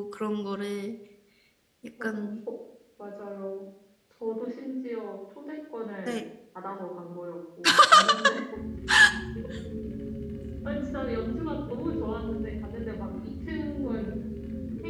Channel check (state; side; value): identical; both; correlation 1.00